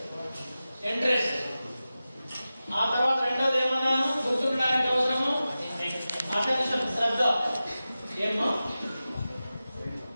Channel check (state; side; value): inverted; both; correlation -0.94